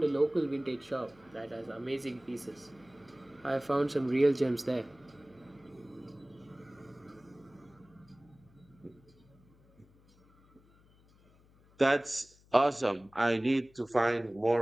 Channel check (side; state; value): left; noise; hum, 28 dB below the sound